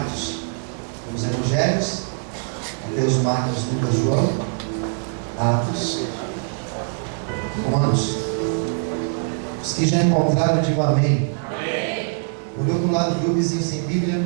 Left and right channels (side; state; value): left; silent; 60 dB below the other